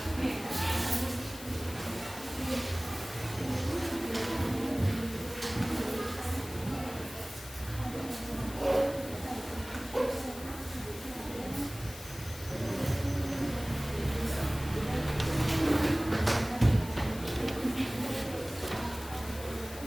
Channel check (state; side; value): noise; left; hiss, 14 dB below the sound